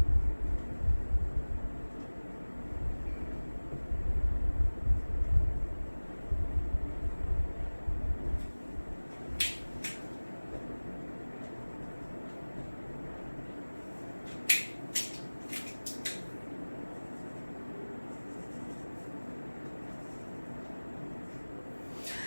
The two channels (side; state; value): both; inverted; correlation -1.00